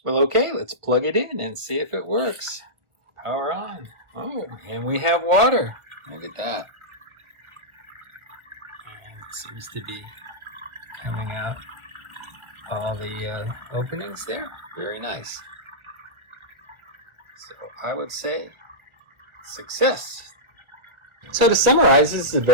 Well, okay, let's plug it in and see if it works. Power on. Oh, and we have water. Look at that. And it seems to be coming out all the openings there. Very nice. So I would say success. So to summarize, this is a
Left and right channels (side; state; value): left; late; 1.1 ms